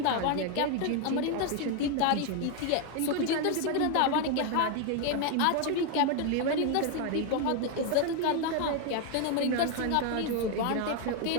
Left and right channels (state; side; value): different; both; correlation 0.01